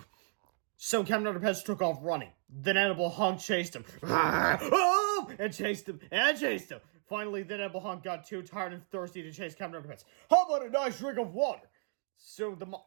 So Captain Underpants took off running. The Inedible Hunk chased him. And chased him. Finally, the Inedible Hunk got too tired and thirsty to chase Captain Underpants. How about a nice drink of water? So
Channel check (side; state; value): left; silent; 56 dB below the other